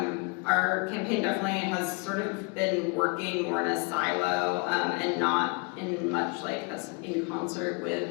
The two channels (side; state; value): right; quieter; 31.8 dB